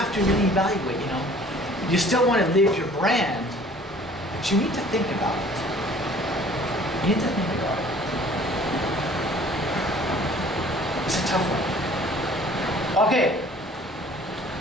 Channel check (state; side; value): normal; both; correlation 0.52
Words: to really evaluate, you know. You still want to live your brand, but you need to think about it. You need to think about it. It's a tough one. Okay.